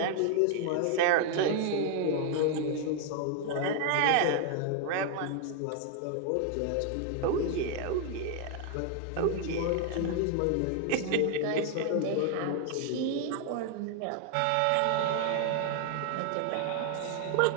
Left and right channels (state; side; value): different; both; correlation 0.00